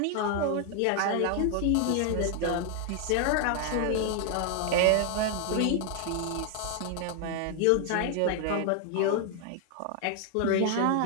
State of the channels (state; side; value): different; both; correlation 0.00